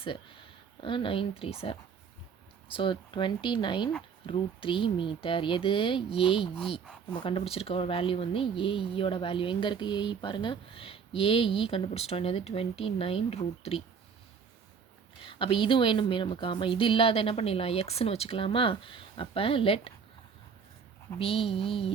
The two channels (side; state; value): left; quieter; 6.3 dB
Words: 9 3s are, so 29 √3 metre. எது, ஏஇ. நம்ம கண்டுபிடிச்சிருக்க வேல்யூ வந்து ஏஇயோட வேல்யூ. எங்கே இருக்குது ஏஇ பாருங்கள், ஏஇ கண்டுபிடிச்சிட்டோம், என்னது 29 √3. அப்போ இது வேணுமே நமக்கு. ஆமாம், இது இல்லாத என்ன பண்ணிடலாம், எக்ஸ்ன்னு வச்சுக்கலாமா? அப்போ let P E